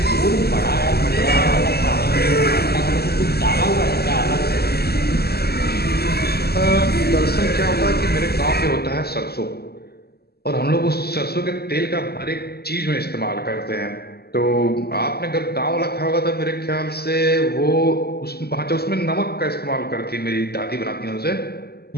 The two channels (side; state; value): right; late; 0.46 ms